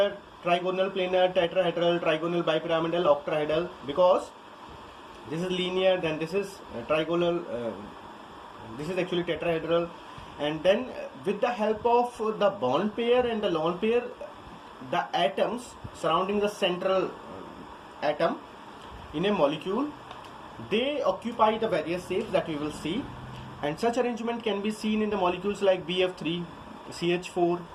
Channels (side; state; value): both; identical; correlation 1.00